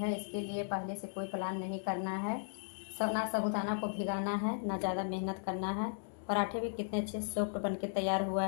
इसके लिए पहले से कोई प्लान नहीं करना है, ना साबूदाना को भिगाना है, ना ज़्यादा मेहनत करना है। पराठे भी कितने अच्छे सॉफ्ट बन के तैयार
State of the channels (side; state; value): right; silent; digital silence